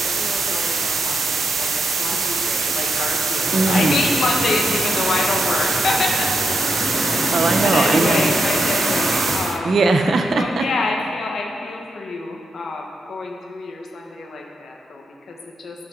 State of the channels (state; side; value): normal; both; correlation 0.84